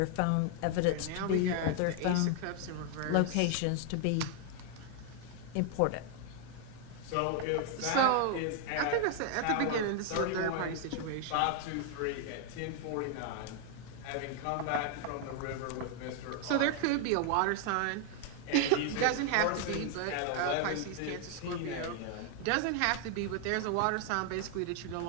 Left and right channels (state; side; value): different; both; correlation 0.00